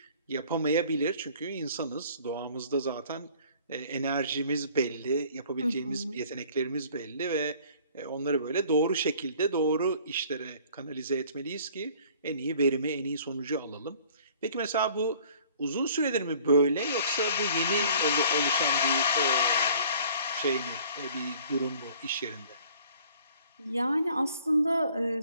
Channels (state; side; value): inverted; both; correlation -0.53